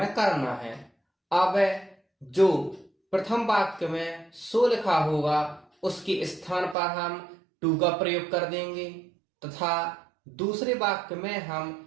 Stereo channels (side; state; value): left; drops out; at 6.8 s